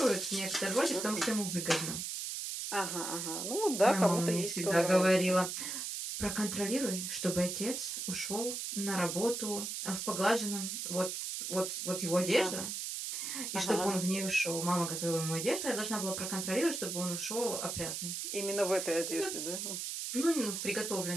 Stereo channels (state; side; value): noise; right; hiss, 4 dB below the sound